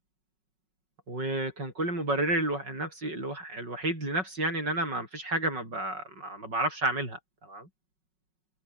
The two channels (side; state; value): left; late; 5.4 ms